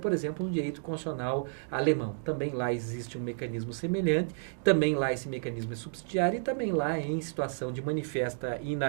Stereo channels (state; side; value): silent; left; digital silence